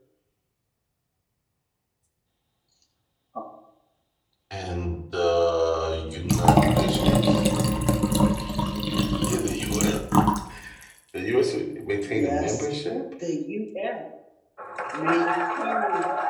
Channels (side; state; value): both; identical; correlation 1.00